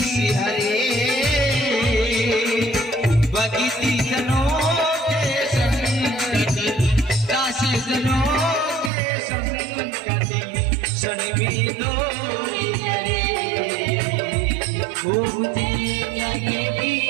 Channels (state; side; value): drops out; left; at 8.9 s